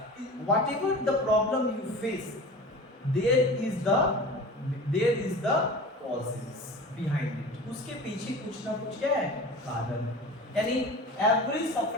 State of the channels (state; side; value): normal; both; correlation 0.36